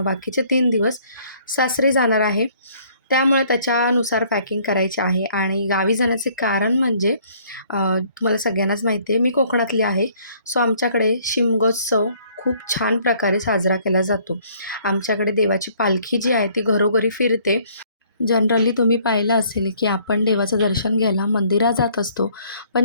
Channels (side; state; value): both; inverted; correlation -0.61